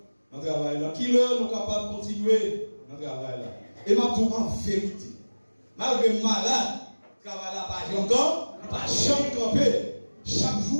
dans le travail là, qui l'heure nous sommes capables de continuer dans le travail là. Et ma tout en vérité, malgré malade, le travail là pas encore, il pas jamais camper. Chaque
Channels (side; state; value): both; inverted; correlation -1.00